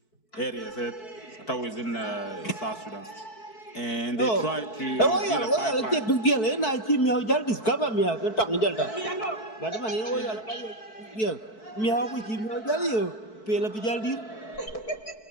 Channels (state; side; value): late; right; 4.6 ms